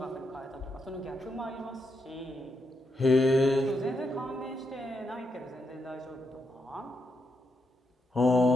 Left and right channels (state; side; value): normal; both; correlation 0.82